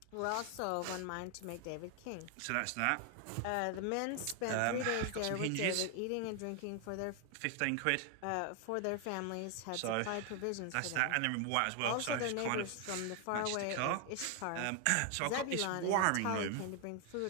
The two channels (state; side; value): different; both; correlation 0.00